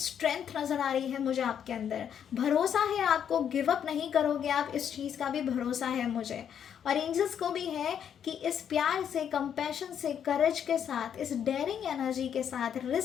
नज़र आ रही है मुझे आपके अंदर, भरोसा है आपको, गिव अप नहीं करोगे आप, इस चीज़ का भी भरोसा है मुझे। और एंजल्स को भी है कि इस प्यार से, कंपैशन से, करेज के साथ, इस डेयरिंग एनर्जी के साथ,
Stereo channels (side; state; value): right; quieter; 8.6 dB